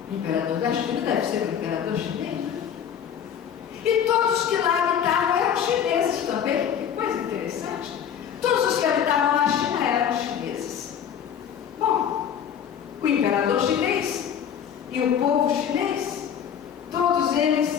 o imperador da China deve ser um imperador chinês, né? E todos que lá habitavam eram chineses também. Que coisa interessante. Todos os que habitavam na China eram chineses. Bom, o imperador chinês e o povo chinês, todos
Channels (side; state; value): right; quieter; 8.6 dB